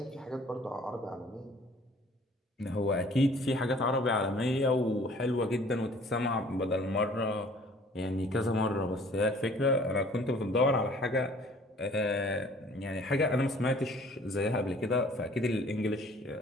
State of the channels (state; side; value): normal; both; correlation 0.53